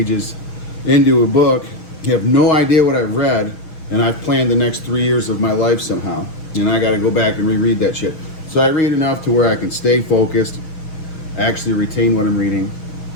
into a book. You have no idea what I've read, and I've planned the next 3 years of my life somehow, and I got to go back and reread that shit. So I read enough to where I can stay focused, actually retain what I'm reading,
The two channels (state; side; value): late; right; 6.3 ms